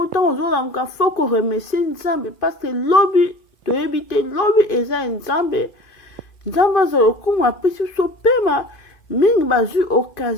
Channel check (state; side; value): late; right; 2.5 ms